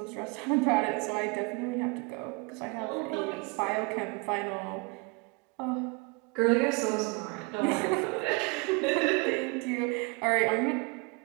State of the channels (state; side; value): quieter; left; 29.1 dB